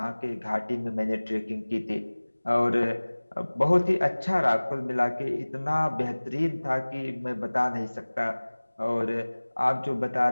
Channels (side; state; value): both; inverted; correlation -1.00